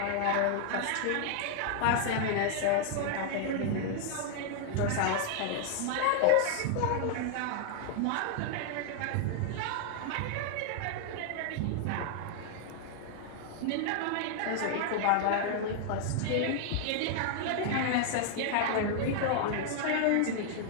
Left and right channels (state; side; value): different; both; correlation 0.00